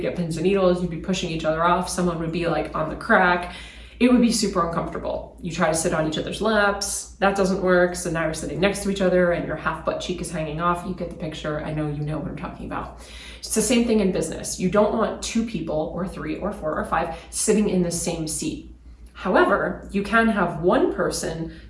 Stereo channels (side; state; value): both; identical; correlation 1.00